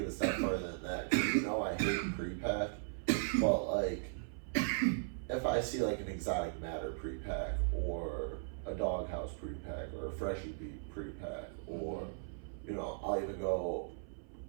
a step further than that, 'cause I hate pre-pack, but like if I see like an exotic matter pre-pack or a doghouse pre-pack or a freshie beat pre-pack or I'll even go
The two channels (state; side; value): silent; left; 53 dB below the other